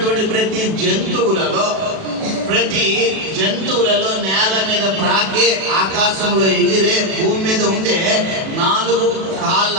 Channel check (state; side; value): late; left; 37 ms